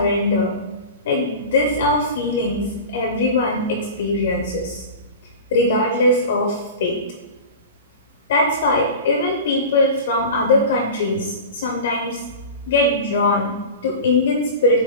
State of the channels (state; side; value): inverted; both; correlation -0.32